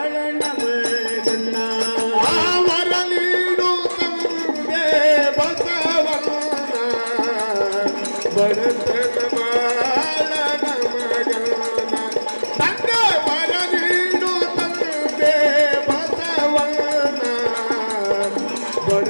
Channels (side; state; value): both; inverted; correlation -1.00